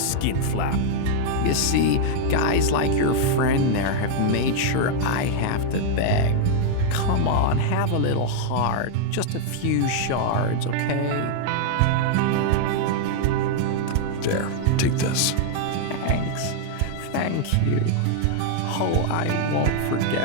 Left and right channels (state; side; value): different; both; correlation -0.01